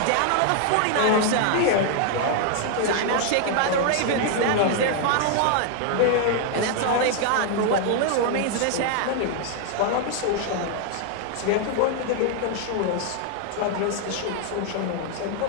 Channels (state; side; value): different; both; correlation 0.00